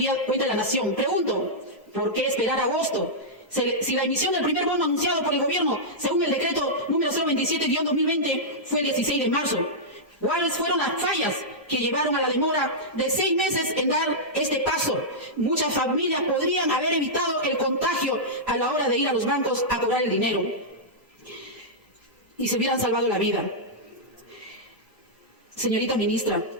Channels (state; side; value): normal; both; correlation -0.10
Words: Nación. Pregunto, ¿por qué esperar agosto? Si la emisión del primer bono anunciado por el gobierno, según el decreto número 027-2020, fue el 16 de marzo. ¿Cuáles fueron las fallas que llevaron a la demora de 6 meses en dar este paso? Muchas familias podrían haber evitado el contagio a la hora de ir a los bancos a cobrar el dinero y se hubieran salvado la vida. Señorita ministra,